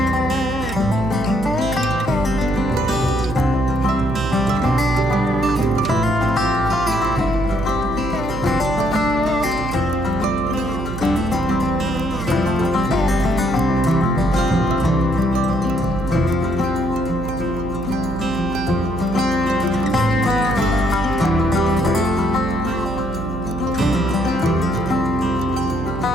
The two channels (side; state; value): right; noise; hum, 7 dB below the sound